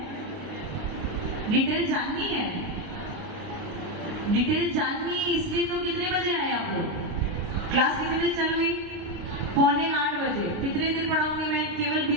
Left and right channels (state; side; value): late; left; 29 ms